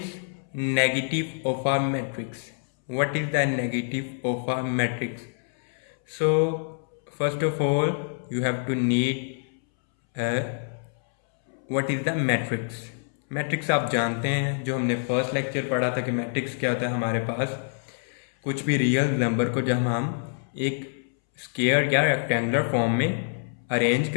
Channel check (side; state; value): right; silent; 61 dB below the other